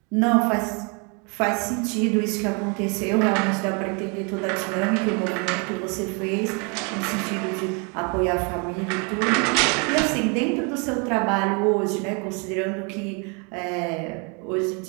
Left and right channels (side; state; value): left; quieter; 34.1 dB